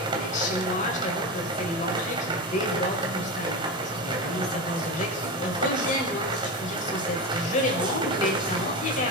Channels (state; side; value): normal; both; correlation 0.21